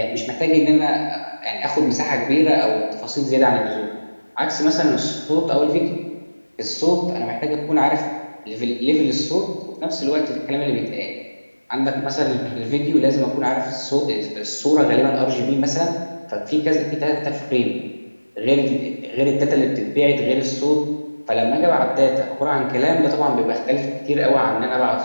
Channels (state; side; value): inverted; both; correlation -1.00